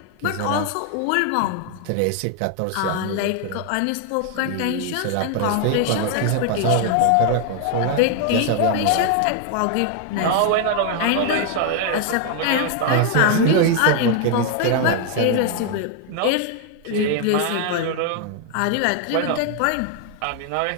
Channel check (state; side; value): different; both; correlation 0.00